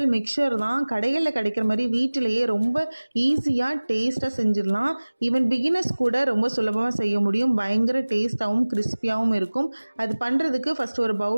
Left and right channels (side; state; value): both; inverted; correlation -1.00